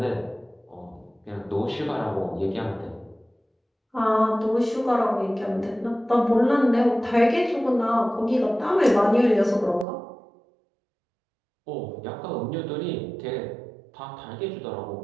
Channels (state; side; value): drops out; left; at 9.9 s